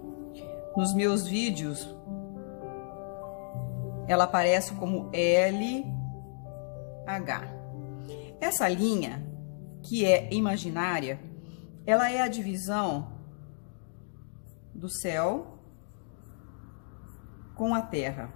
Nos meus vídeos, ela aparece como LH. Essa linha, que é imaginária, ela é a divisão do céu com a terra.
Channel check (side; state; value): right; silent; digital silence